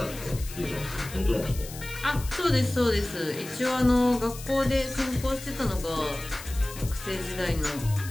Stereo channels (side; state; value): left; noise; hiss, 14 dB below the sound